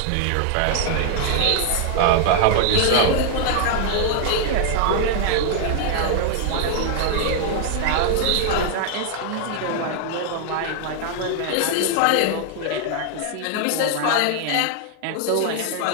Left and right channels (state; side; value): different; both; correlation 0.00